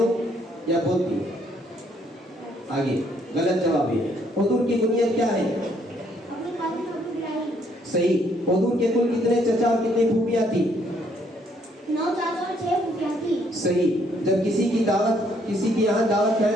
یا بولتی آگے. غلط جواب ہے. حضور کی کنیت کیا ہے؟ صحیح. حضور کے کل کتنے چچا اور کتنی پھوپھیاں تھی؟ 9 چاچا اور 6 پھوپھیاں تھی. صحیح. جب کسی کی یہاں دعوت کرے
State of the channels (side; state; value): both; normal; correlation 0.68